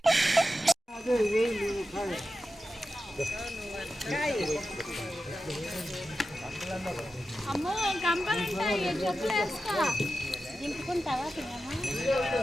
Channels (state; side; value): normal; both; correlation 0.92